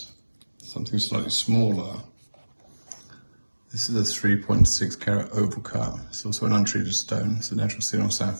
something slightly smaller. This is a 3.6 carat oval cut. It's also an untreated stone. It's a natural Ceylon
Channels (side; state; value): both; inverted; correlation -1.00